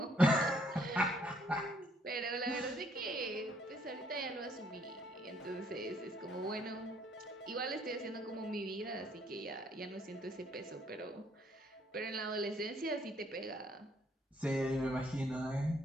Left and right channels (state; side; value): normal; both; correlation 0.67